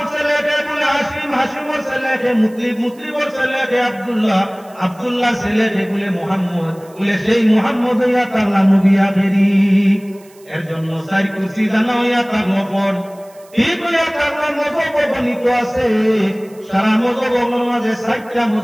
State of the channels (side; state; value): right; noise; hiss, 28 dB below the sound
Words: ছেলেকে বলে হাসিম হাসিমর ছেলেকে মুতলিব মুতলিবর ছেলেকে আব্দুল্লাহ আব্দুল্লাহ ছেলেকে বলে মুহাম্মদ বলে সেই মুহাম্মদ হইয়া তাগলা নবী আখেরি এর জন্য চার কুরসি জানা হইয়া তাগলা পর ঠিক হইয়া তাগলা মজব বর্ণিত আছে সারা মজবের মাঝে 60টা